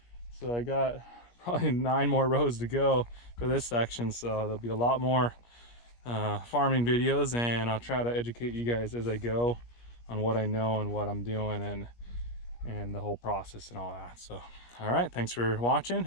So I got probably 9 more rows to go for this section, so there'll be a lot more farming videos, and I'll try to educate you guys as I go on what I know and what I'm doing and the whole process and all that. So all right, thanks for watching,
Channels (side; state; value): right; late; 17 ms